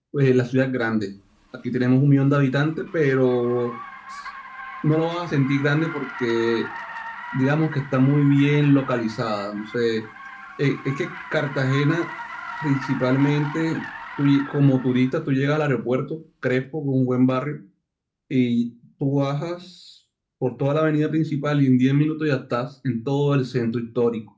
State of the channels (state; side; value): identical; both; correlation 1.00